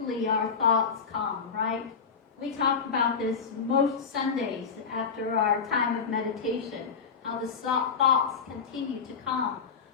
our thoughts come, right? We talk about this most Sundays after our time of meditation, how the thoughts continue to come.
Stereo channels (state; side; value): quieter; right; 5.8 dB